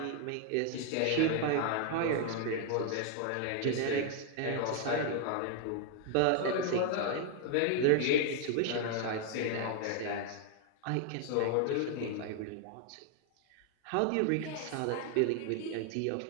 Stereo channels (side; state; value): both; different; correlation 0.00